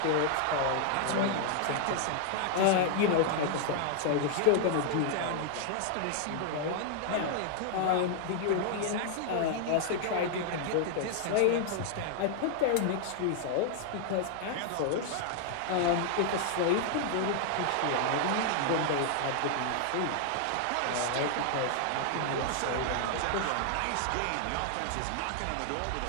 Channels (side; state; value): both; different; correlation 0.00